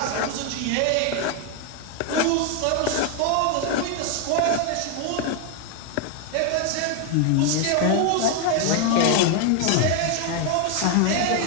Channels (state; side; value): different; both; correlation 0.01